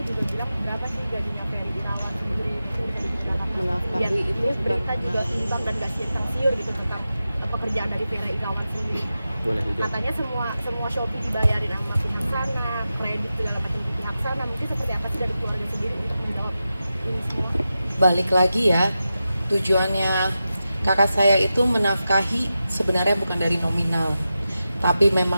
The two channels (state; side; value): inverted; both; correlation -0.92